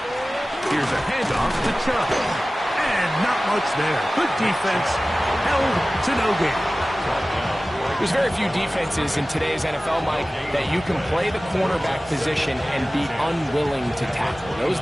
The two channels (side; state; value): both; normal; correlation 0.97